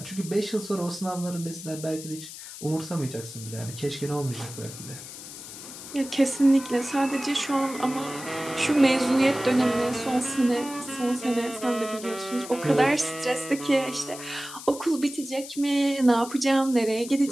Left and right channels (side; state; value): left; noise; hiss, 13 dB below the sound